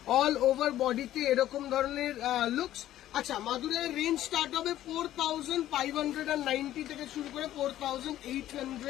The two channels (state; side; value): quieter; right; 13.1 dB